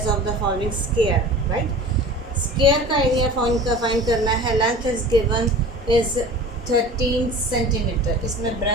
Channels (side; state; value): both; normal; correlation 0.39